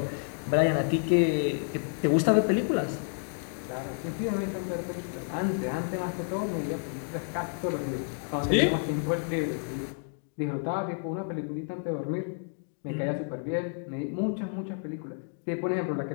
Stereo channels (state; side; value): silent; right; 58 dB below the other